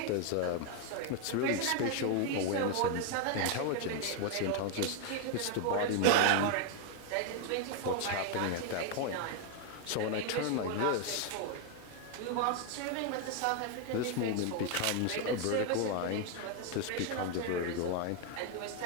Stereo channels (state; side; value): different; both; correlation 0.01